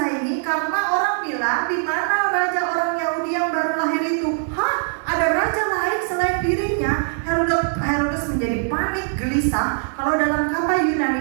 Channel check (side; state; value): left; silent; 62 dB below the other